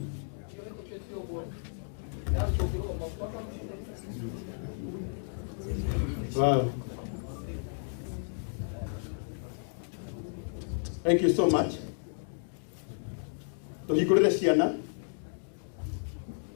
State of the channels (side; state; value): right; silent; digital silence